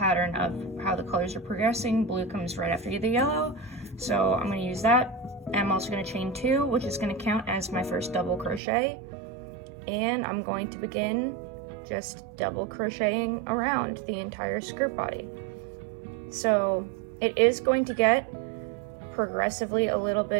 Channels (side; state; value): left; drops out; at 8.6 s